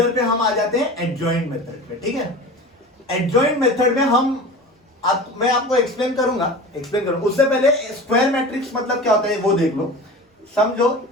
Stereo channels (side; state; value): both; normal; correlation 0.35